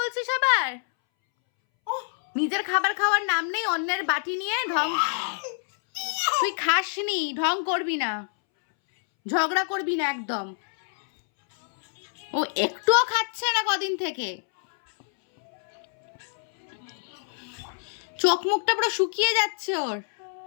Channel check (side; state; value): right; silent; 61 dB below the other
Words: আবার? নিজের খাবার খাওয়ার নাম নেই, অন্যের বাটি নিয়ে ঢং। তুই খাসনি, ঢং করবি না, ঝগড়া করবি না একদম। ও একটুও খাচ্ছে না কদিন থেকে, চোখ মুখটা পুরো শুকিয়ে যাচ্ছে ওর,